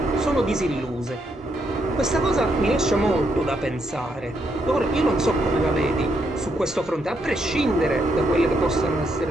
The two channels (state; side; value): normal; both; correlation 0.77